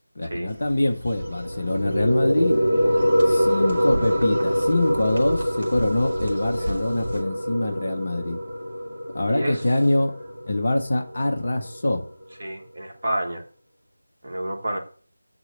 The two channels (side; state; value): both; inverted; correlation -0.97